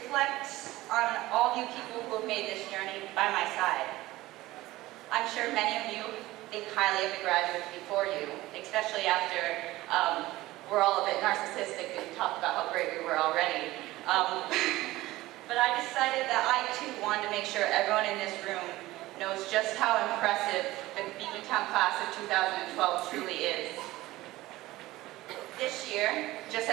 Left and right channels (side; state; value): left; quieter; 17.8 dB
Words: on all of you people who have made this journey by my side. I'm sure many of you think highly of the graduates before you, especially after we're all a bit narcissistic and talk about how great we were already. But I decided that I too wanted to make sure everyone in this room knows just how impressive the Beekmantown class of 2012 truly is. This year, just